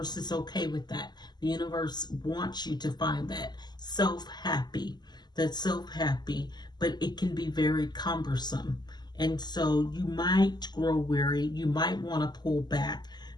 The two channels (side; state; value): right; late; 0.21 ms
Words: is okay with that. The universe wants you to find that self-happy, but it can be very cumbersome. And so you might grow weary, you might want to pull back,